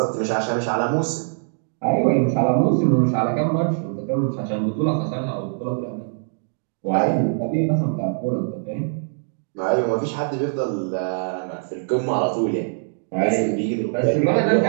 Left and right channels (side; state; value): left; silent; digital silence